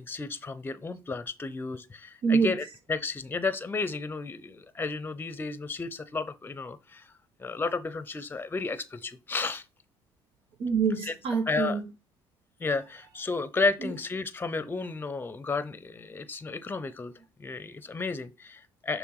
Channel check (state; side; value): normal; both; correlation 0.58